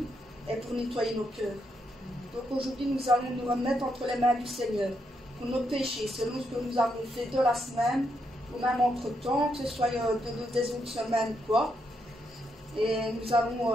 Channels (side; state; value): both; normal; correlation 0.79